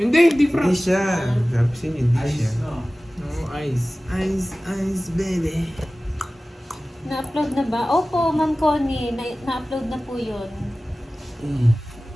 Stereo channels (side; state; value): both; normal; correlation 0.97